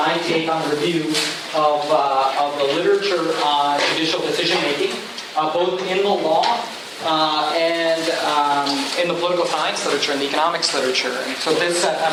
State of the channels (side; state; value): both; identical; correlation 1.00